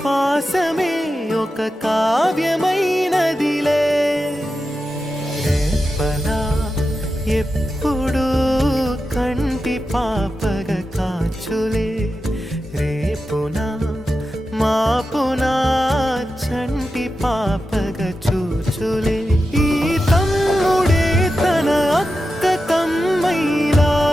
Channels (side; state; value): both; normal; correlation 0.91